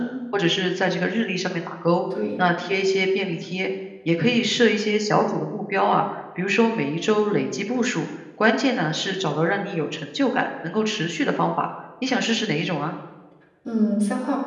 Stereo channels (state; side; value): identical; both; correlation 1.00